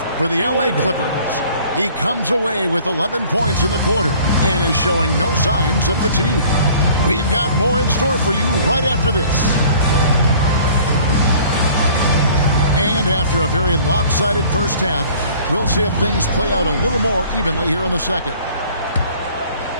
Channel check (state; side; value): inverted; both; correlation -0.51